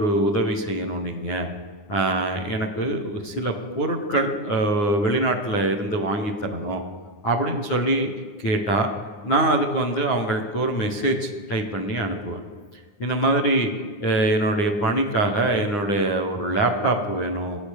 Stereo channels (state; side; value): late; right; 9.7 ms